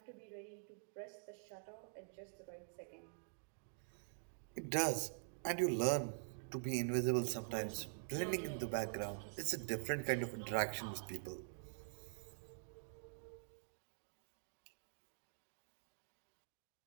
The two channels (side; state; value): left; silent; digital silence